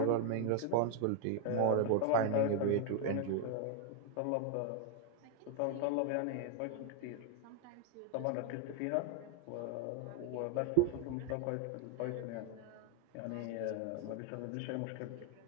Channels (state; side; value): different; both; correlation 0.01